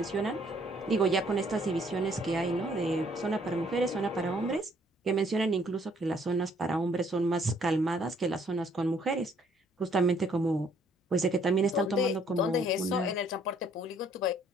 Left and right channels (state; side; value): normal; both; correlation 0.63